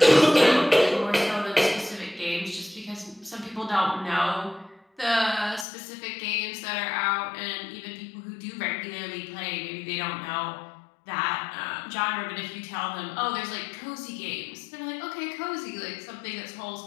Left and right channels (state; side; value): drops out; right; at 5.7 s